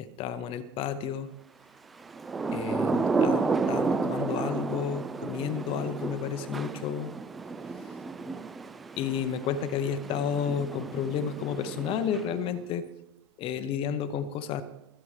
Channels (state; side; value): normal; both; correlation 0.48